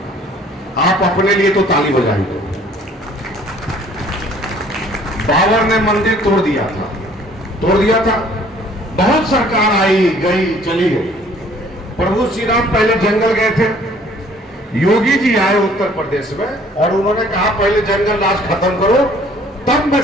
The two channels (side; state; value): both; normal; correlation 0.57